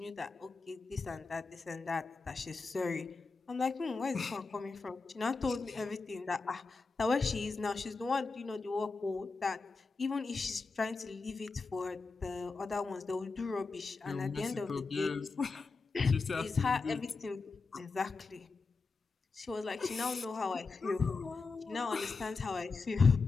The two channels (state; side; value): quieter; right; 4.2 dB